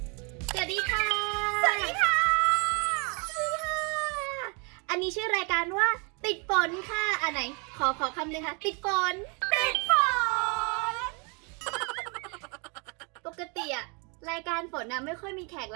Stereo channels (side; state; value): left; quieter; 33.2 dB